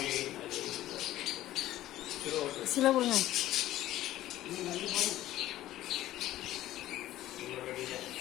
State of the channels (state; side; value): quieter; right; 14.5 dB